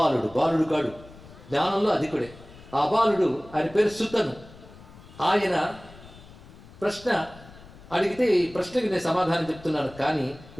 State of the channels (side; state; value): left; noise; rumble, 20 dB below the sound